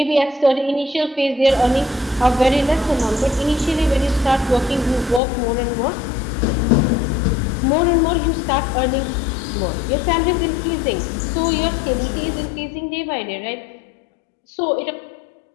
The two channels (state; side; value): drops out; right; at 5.2 s